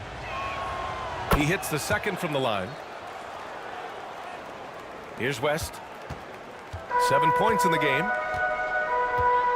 He hits the second from the line. Here's West. 7 points in the game.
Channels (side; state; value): both; identical; correlation 1.00